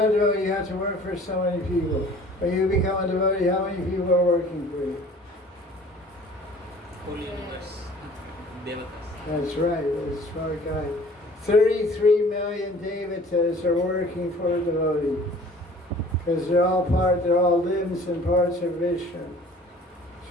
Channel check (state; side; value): normal; both; correlation 0.49